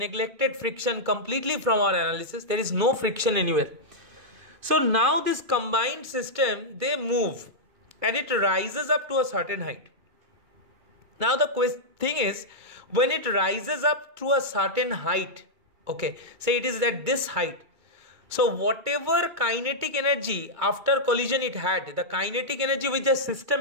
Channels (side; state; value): left; late; 2.3 ms